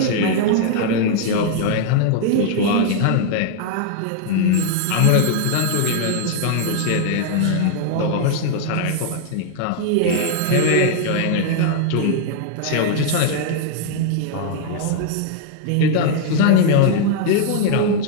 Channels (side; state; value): both; different; correlation 0.00